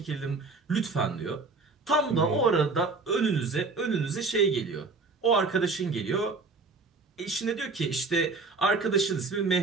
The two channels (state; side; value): quieter; left; 3.9 dB